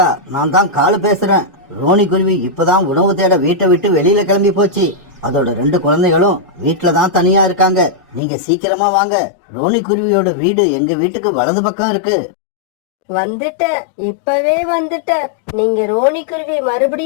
நான் தான் காலு பேசுறேன். ரோனி குருவி இப்பதான் உணவு தேட வீட்டை விட்டு வெளியில கிளம்பி போச்சு. அதோட 2 குழந்தைகளும் வீட்டுல தான் தனியா இருக்காங்க. நீங்க சீக்கிரமா வாங்க. ரோனி குருவியோட வீடு எங்க வீட்டுக்கு வலது பக்கம் இருக்கு. வந்துட்டேன், இப்பவே வந்துட்டேன். நீங்க ரோனி குருவி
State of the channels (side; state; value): right; drops out; at 8.2 s